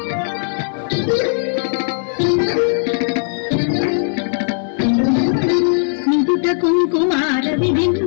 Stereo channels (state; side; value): silent; right; digital silence